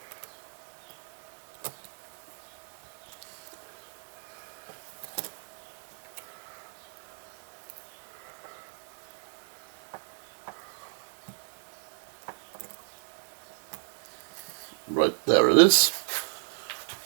Right there it is.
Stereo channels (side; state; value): left; silent; 56 dB below the other